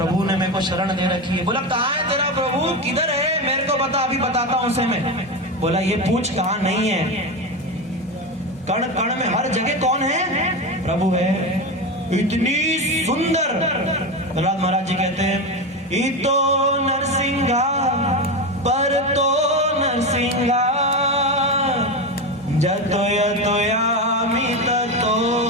ने मेरे को शरण दे रखी है। बोला कहाँ है तेरा प्रभु, किधर है, मेरे को बता, अभी बताता हूं उसे मैं। बोला ये पूछ कहाँ नहीं है, कण कण में हर जगह कौन है? प्रभु है। इतनी सुंदर प्रहलाद महाराज जी कहते हैं इतो नरसिंहा पर तो नरसिंहा जतो यतो यामि ततो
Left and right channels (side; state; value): both; normal; correlation 0.18